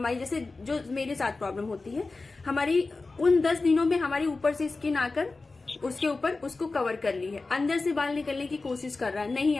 जैसे जो मेरे साथ प्रॉब्लम होती है, हमारी उन 10 दिनों में हमारी ऊपर से स्किन आकर उसके ऊपर उसको कवर कर ली है, अंदर से बाल निकलने की कोशिश कर रहा है, नहीं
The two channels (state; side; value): quieter; right; 3.7 dB